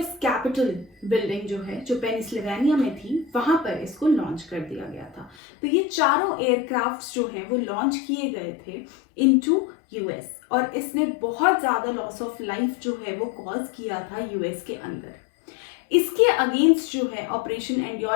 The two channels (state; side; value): drops out; right; at 5.4 s